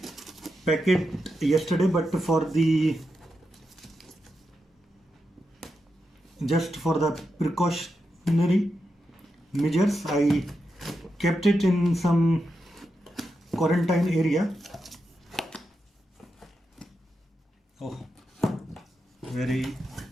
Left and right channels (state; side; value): normal; both; correlation 0.87